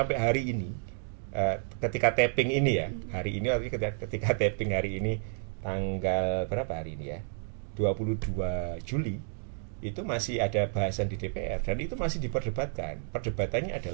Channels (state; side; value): silent; left; digital silence